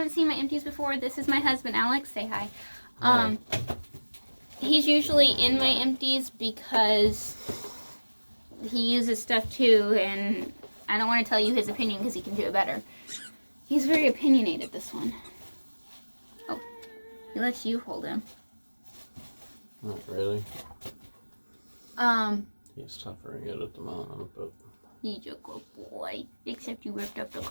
seen my empties before, this is my husband, Alex. Say hi. He's usually in my empties because he uses stuff too, and I don't want to tell you his opinion because he can do it better. He's very opinionated, this one. Oh, he lets you hold him. Not really. He's suffering it at the moment, but... He's a good boy. Except you ripped up the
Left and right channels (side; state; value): both; inverted; correlation -1.00